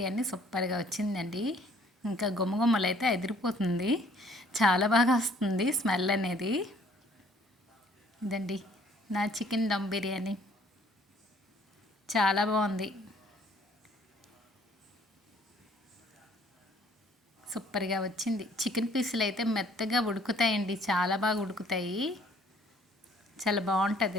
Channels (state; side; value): normal; both; correlation 0.59